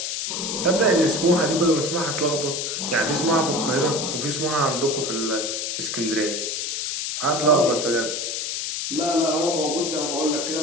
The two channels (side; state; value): left; noise; hiss, 3 dB below the sound